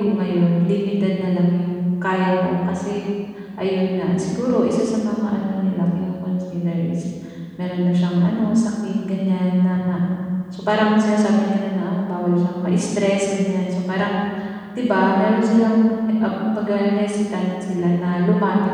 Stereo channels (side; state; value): both; identical; correlation 1.00